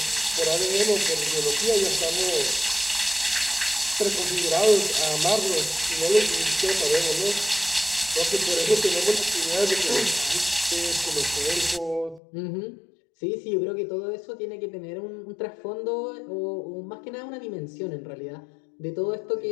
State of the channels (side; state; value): right; drops out; at 12.2 s